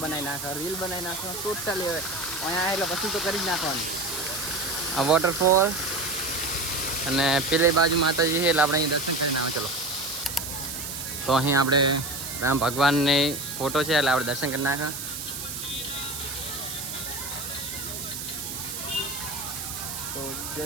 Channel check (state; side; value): noise; right; hiss, 6 dB below the sound